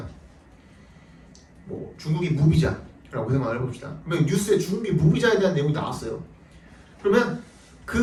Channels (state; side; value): identical; both; correlation 1.00